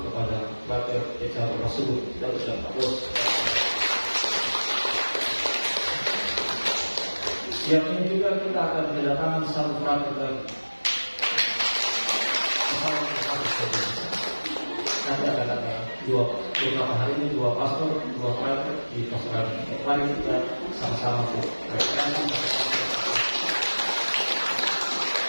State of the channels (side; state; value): both; inverted; correlation -1.00